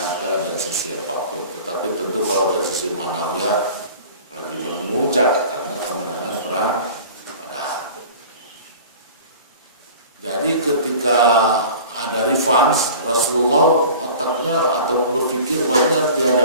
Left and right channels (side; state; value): both; inverted; correlation -0.42